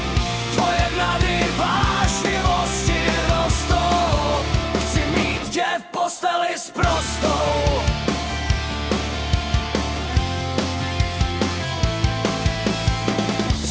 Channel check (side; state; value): both; identical; correlation 1.00